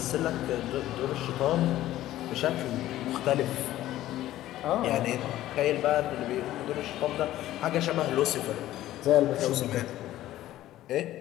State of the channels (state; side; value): quieter; right; 14.3 dB